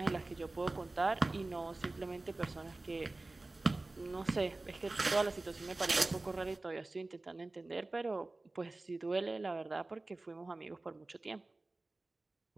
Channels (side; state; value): left; quieter; 3.1 dB